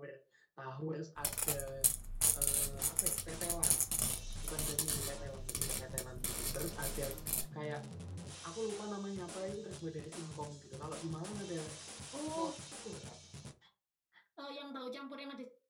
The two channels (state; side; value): identical; both; correlation 1.00